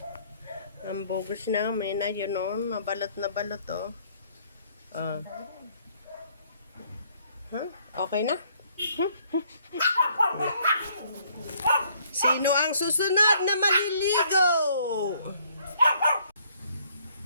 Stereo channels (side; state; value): both; inverted; correlation -0.64